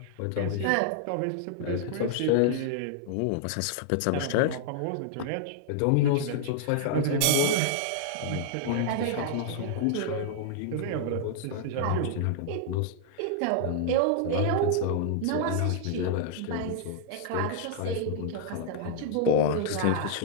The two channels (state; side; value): different; both; correlation -0.01